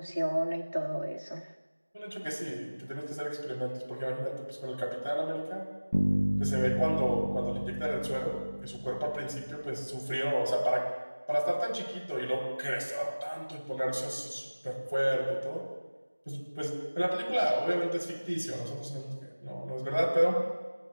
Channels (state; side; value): inverted; both; correlation -1.00